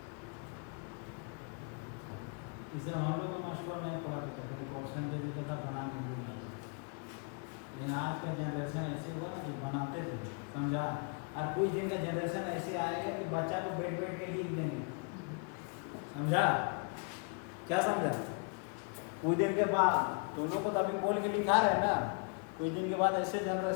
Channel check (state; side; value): quieter; right; 37.4 dB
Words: इसे हम लोग का मशहूर नहीं पढ़ा था, क्वेश्चन दे देता था बना नहीं पाए, लेकिन आज का जनरेशन ऐसे हुआ कि बनाते थे, समझा। और कुछ दिन का जनरेशन ऐसे आएगा कि बच्चा को बैठ बैठ के लिख देंगे, समझा, क्या समझा। कुछ दिन के बाद तुम लोग को तो अभी बोल के लिखा रहे ना, कुछ दिन के बाद ऐसे